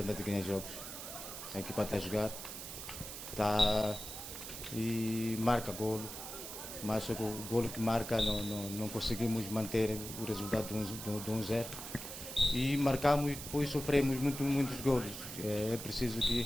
é ganhar jogos. A equipa está a jogar, está e marca golo, mas o golo que marca não conseguimos manter o resultado de 1-0 e marcamos e depois sofremos muitos golos. É preciso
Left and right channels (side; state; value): right; noise; hiss, 9 dB below the sound